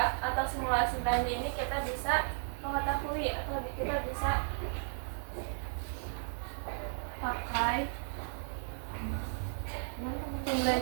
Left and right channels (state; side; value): silent; left; digital silence